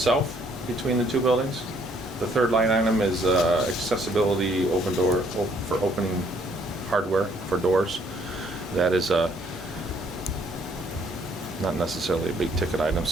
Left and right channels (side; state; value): both; normal; correlation 0.65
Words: between the 2 buildings. The third line item is accessibility for opening hardware for doors. That is not necessarily a big ticket item,